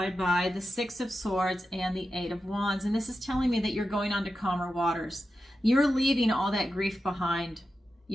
by the 6 of Swords and the 8 of Wands. And this is telling me that you're going on to calmer waters. You're leaving all that grief behind.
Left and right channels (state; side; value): normal; both; correlation 0.91